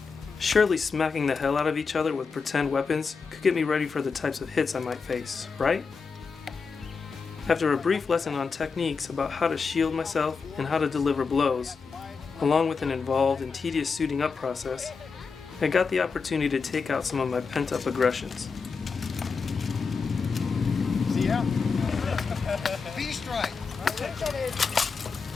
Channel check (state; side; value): quieter; right; 5.1 dB